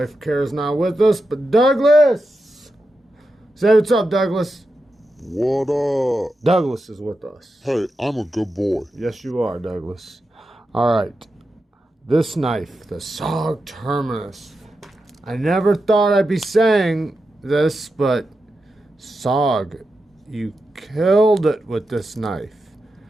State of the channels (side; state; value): both; normal; correlation 0.89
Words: Kara's not with us, but Douglas! Say what's up, Douglas. What up? Douglas is with us. Hey, I'm a good boy. Yes, you are, Douglas. Alright. This knife, the Sog Terminus. I never thought I'd be saying this, but Sog, you killed it with this knife.